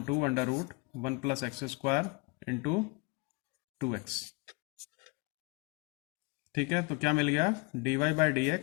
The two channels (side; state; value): right; quieter; 27.0 dB